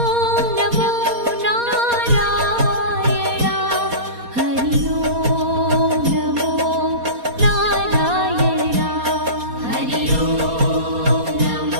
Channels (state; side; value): late; left; 4.2 ms